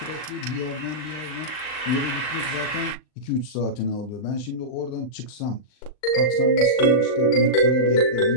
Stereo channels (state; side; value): late; right; 39 ms